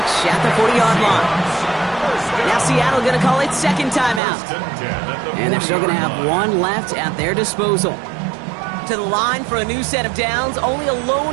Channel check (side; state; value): left; drops out; at 4.2 s